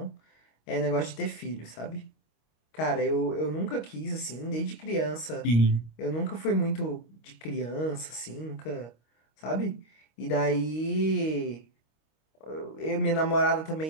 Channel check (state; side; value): late; right; 25 ms